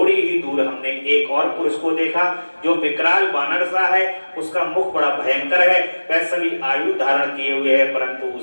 ही दूर हमने एक और पुरुष को देखा, जो विकराल बानर सा है। उसका मुख बड़ा भयंकर है। वह सभी आयु धारण किए हुए है, परंतु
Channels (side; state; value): both; inverted; correlation -1.00